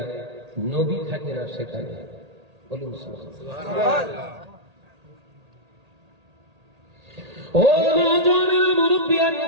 নবী থাকে না সেখানে। বলুন সুবহানাল্লাহ। ও নওজোয়ানেরা,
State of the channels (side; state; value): left; late; 1.8 ms